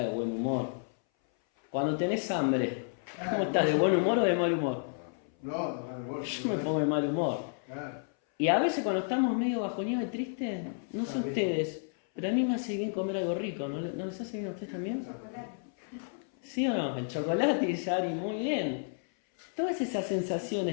de buen humor? Cuando tenés hambre, ¿cómo estás? ¿De buen humor o de mal humor? No, vos. Yo me pongo de mal humor. Claro. Y a veces cuando estamos medio bajoneados y tristes, no sé Está bien. ustedes, pero a mí me hace bien comer algo rico. ¿No les hace bien a ustedes también? ¿Sí o no? El chocolate, dice Ari, muy bien. Todas esas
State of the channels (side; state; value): right; silent; 57 dB below the other